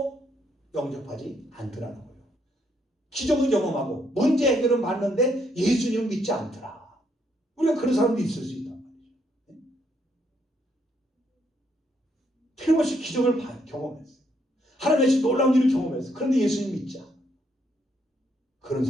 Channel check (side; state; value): both; normal; correlation 0.73